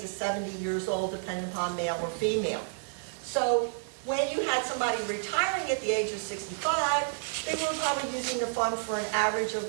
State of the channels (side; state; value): left; silent; digital silence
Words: 70 years old, depending upon male or female. So when you had somebody retiring at the age of 65, they were probably using the fund for an average of,